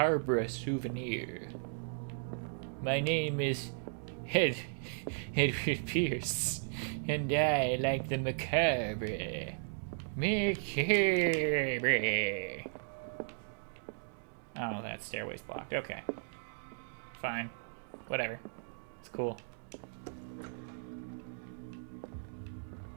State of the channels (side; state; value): left; silent; digital silence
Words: souvenir. My name is Edward Pierce, and I like the macabre. Macabre. Oh, that stairway's blocked. Okay. Fine. Whatever. It's cool.